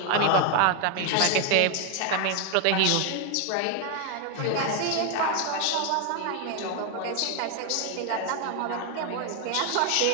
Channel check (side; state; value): both; different; correlation 0.01